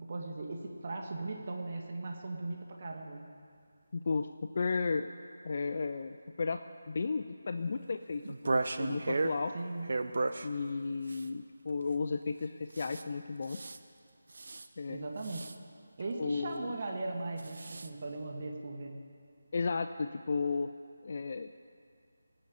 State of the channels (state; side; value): inverted; both; correlation -0.91